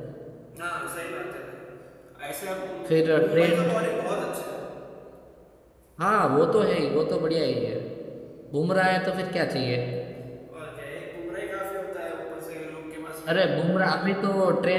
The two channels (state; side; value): identical; both; correlation 1.00